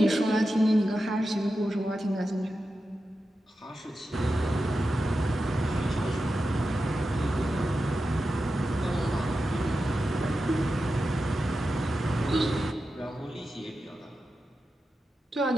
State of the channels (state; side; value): normal; both; correlation 0.91